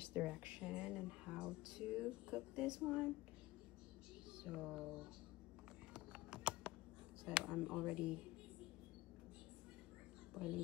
direction and how to cook this one. So I'm already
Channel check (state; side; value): quieter; right; 18.6 dB